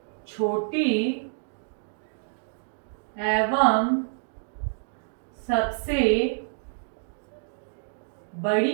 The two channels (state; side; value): silent; left; digital silence